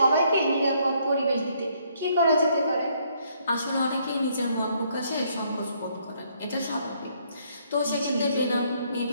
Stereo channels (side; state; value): both; inverted; correlation -0.69